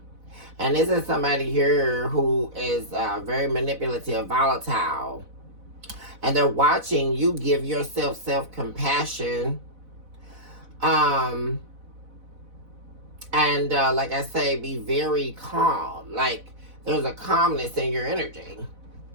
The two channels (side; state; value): left; late; 4.0 ms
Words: And this is somebody here who is very manipulative, volatile. And they're watching you give yourself self-compassion. And like I say, be very calm. Like, there's a calmness in your energy.